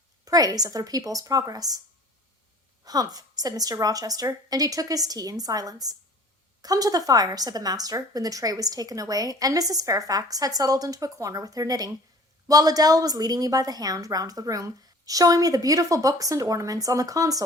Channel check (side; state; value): both; normal; correlation 0.47